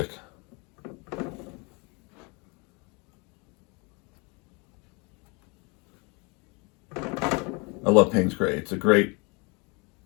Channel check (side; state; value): right; quieter; 30.5 dB